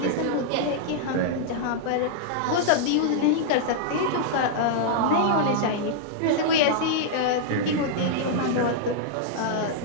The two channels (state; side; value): different; both; correlation -0.01